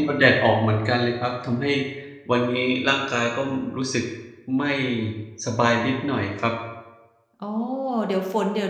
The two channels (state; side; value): identical; both; correlation 1.00